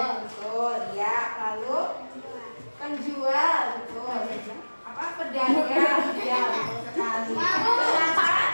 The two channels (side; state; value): both; inverted; correlation -1.00